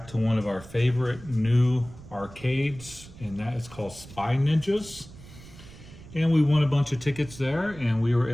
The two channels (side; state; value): right; noise; rumble, 18 dB below the sound